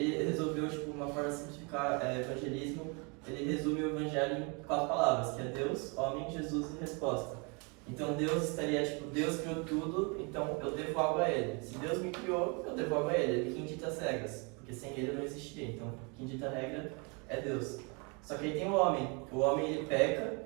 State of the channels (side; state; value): left; quieter; 32.7 dB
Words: resolveu, tipo, uma forma de simplificar evangelismo, ele resume o Evangelho em 4 palavras, que é Deus, homem, Jesus e resposta. Então Deus estaria, tipo, Deus criou tudo, então eu devo algo a Ele. Se Deus me criou, eu devo algo a Ele. Ele quem dita as regras, porque sem Ele eu não existiria. Então quem dita a regra é Deus. Só que aí tem o homem ele peca,